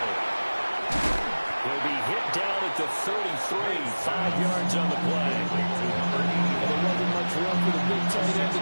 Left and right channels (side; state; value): both; inverted; correlation -1.00